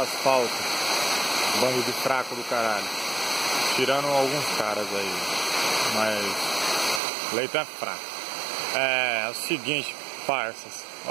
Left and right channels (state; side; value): drops out; left; at 7.0 s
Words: bando de fraco do caralho. Tirando alguns caras aí, mas Leito é fraco. É o seguinte, parças,